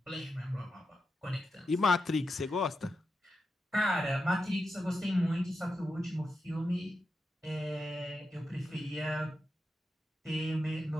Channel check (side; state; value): both; normal; correlation 0.88